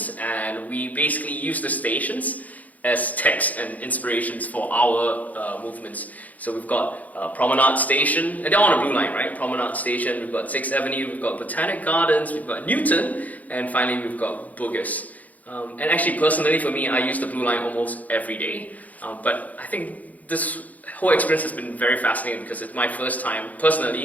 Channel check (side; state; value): right; late; 0.077 ms